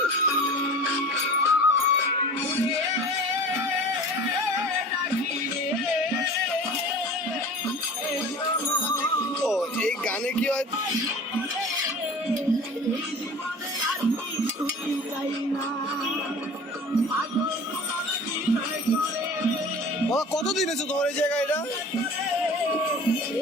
ও এই গানে কি হয় কতদিন হয়েছে তোমার এই জায়গায়? এটা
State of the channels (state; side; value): normal; both; correlation 0.40